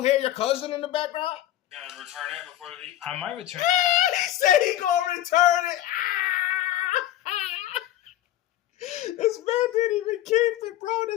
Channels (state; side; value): quieter; right; 13.1 dB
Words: hear your cousin in the background? You gonna return it before you leave? I might return. He said he gonna return it. This man didn't even keep it, bro.